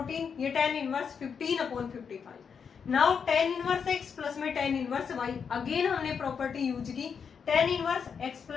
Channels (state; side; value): quieter; right; 6.5 dB